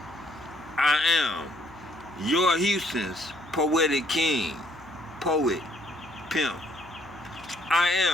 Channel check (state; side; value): noise; left; hum, 24 dB below the sound